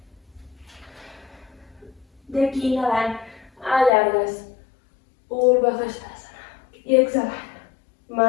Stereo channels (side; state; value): right; drops out; at 3.9 s